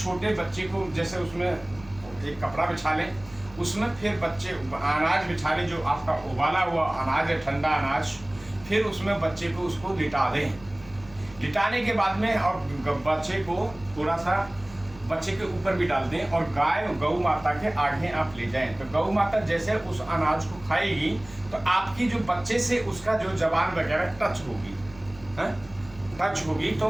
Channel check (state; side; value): noise; right; hum, 21 dB below the sound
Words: बच्चे को जैसे उसमें एक कपड़ा बिछा लें, उसमें फिर बच्चे अनाज बिछा लें, जो आपका उबाला हुआ अनाज है, ठंडा अनाज, फिर उसमें बच्चे को उसको लिटा दें। लिटाने के बाद में और बच्चे को थोड़ा सा बच्चे के ऊपर भी डाल दें और गौ माता के आगे आप ले जाएं। तो गौ माता जैसे उस अनाज को खाएगी तो आपकी जो बच्चे से उसका जो जबान वगैरह टच होगी, टच होगी, तो